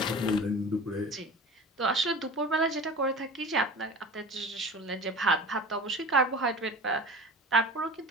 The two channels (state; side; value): normal; both; correlation 0.37